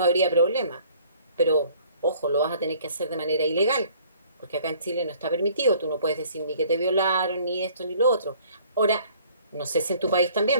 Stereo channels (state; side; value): inverted; both; correlation -0.55